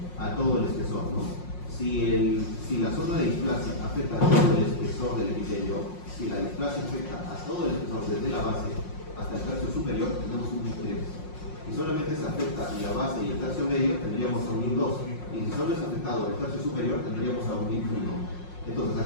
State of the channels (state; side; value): late; right; 5.6 ms